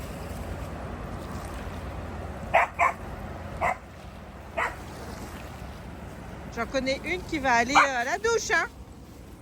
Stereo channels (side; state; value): both; identical; correlation 1.00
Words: J'en connais une qui va aller à la douche, hein.